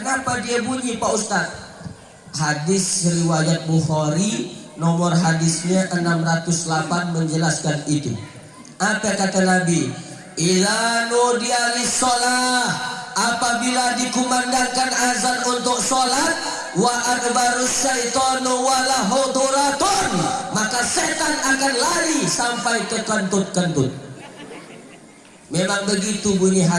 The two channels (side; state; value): both; identical; correlation 1.00